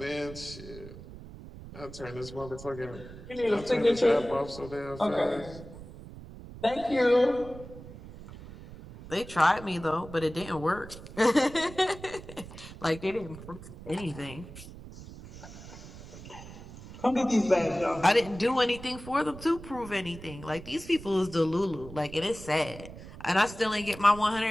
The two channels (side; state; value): right; noise; rumble, 15 dB below the sound